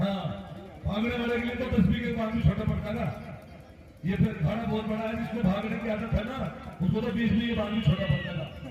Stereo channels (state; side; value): identical; both; correlation 1.00